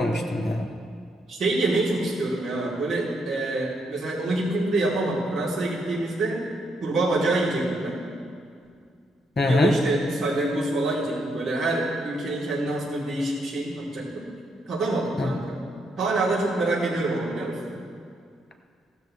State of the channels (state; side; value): normal; both; correlation 0.76